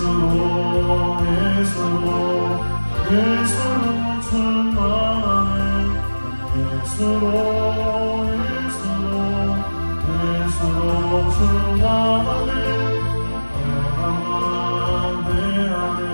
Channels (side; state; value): both; inverted; correlation -1.00